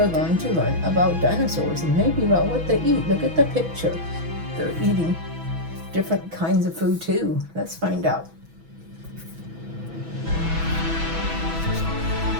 going to learn about dinosaurs and maybe about what they eat. Look at the picture. They're eating different kinds of food too. Let's find out.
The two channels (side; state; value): left; late; 6.1 ms